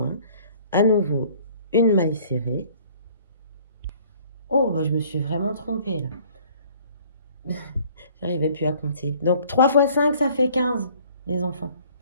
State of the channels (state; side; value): inverted; both; correlation -0.55